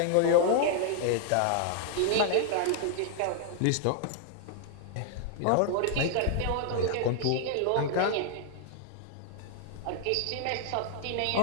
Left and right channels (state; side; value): different; both; correlation -0.01